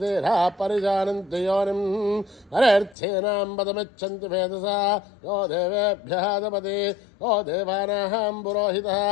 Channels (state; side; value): drops out; right; at 3.0 s